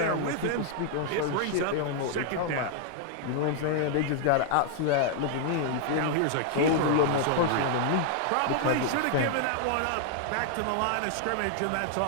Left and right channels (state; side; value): different; both; correlation 0.00